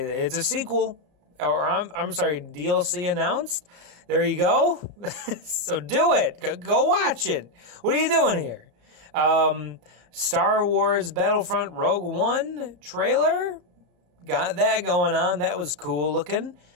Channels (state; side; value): late; left; 34 ms